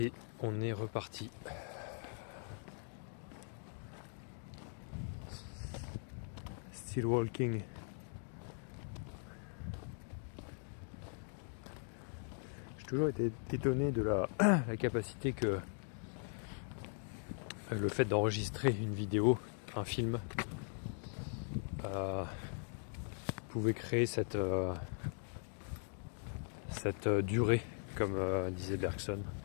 on est reparti. Still walking. J'ai toujours été étonné de la capacité que le fait d'enregistrer une vidéo, un film, pouvait créer cette durée, comme disait Bergson.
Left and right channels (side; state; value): right; silent; 51 dB below the other